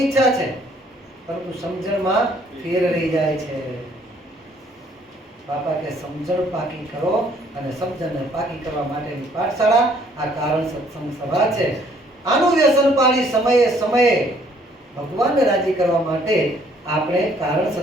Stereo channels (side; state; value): both; normal; correlation 0.62